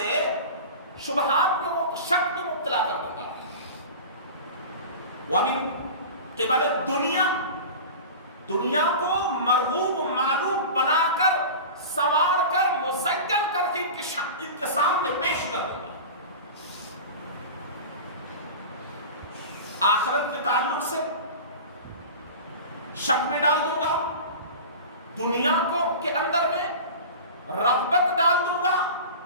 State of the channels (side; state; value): both; inverted; correlation -0.33